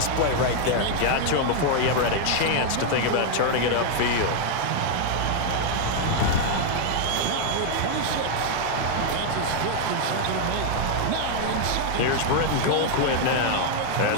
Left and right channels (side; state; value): both; different; correlation 0.00